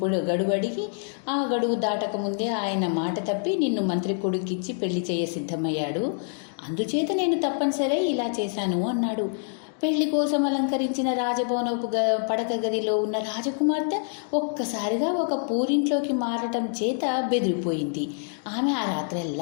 అడిగి, ఆ గడువు దాటకముందే ఆయన మాట తప్పి నిన్ను మంత్రి కొడుకిచ్చి పెళ్లి చేయ సిద్ధమయ్యాడు. అందుచేత నేను తప్పనిసరి ఇలా చేశాను అన్నాడు. పెళ్లి కోసం అలంకరించిన రాజభవనపు పడక గదిలో ఉన్న రాజకుమార్తె ఒక్కసారిగా ఒక పూరింట్లోకి మారటం చేత బెదిరిపోయింది. ఆమె ఆ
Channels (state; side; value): silent; right; 58 dB below the other